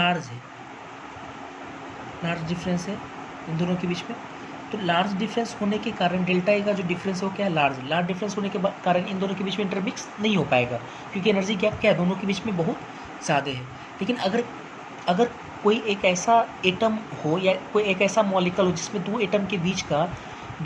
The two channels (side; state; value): both; identical; correlation 1.00